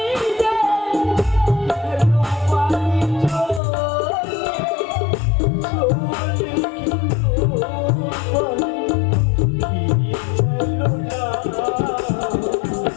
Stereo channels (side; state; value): right; drops out; at 3.6 s